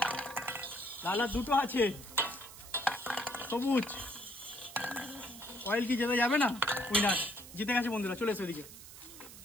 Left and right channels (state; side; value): noise; right; hiss, 16 dB below the sound